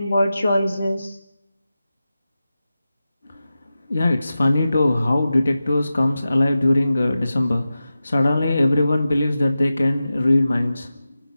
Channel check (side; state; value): both; inverted; correlation -0.93